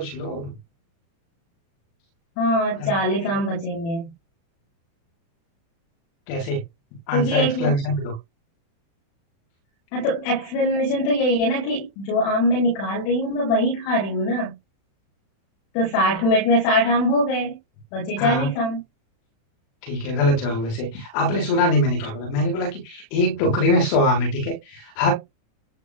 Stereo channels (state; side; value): late; right; 36 ms